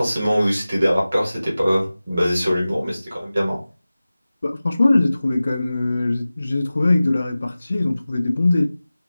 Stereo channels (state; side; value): inverted; both; correlation -0.97